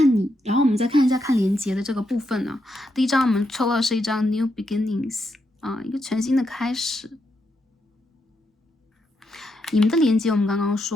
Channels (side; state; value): both; normal; correlation 0.81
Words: 你，然后我们再看一下看连接的这个部分呢。第一张我们抽到的是一张 New Beginnings 啊，一个全新的开始。你们的连接我们刚刚